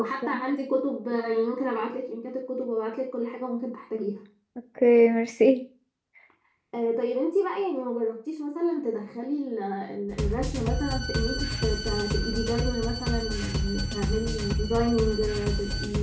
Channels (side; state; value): both; identical; correlation 1.00